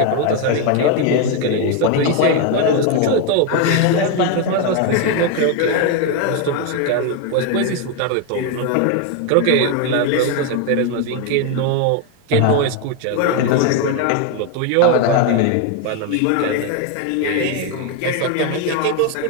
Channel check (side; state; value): both; different; correlation 0.01